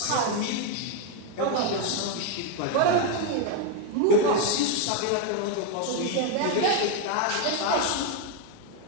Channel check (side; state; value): both; different; correlation 0.01